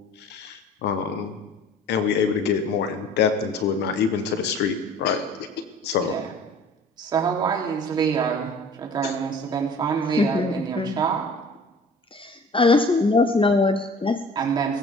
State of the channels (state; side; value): normal; both; correlation 0.46